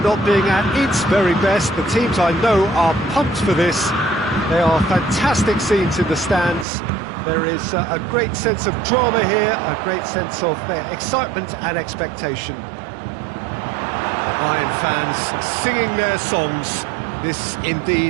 being at its very best. The teams I know are pumped for this. There are fantastic scenes in the stands. There is a great sense of drama here, a great sense of excitement and expectation. The Bayern fans singing their songs. This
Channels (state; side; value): drops out; left; at 6.7 s